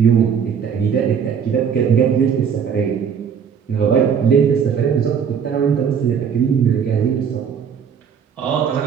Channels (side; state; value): left; quieter; 7.3 dB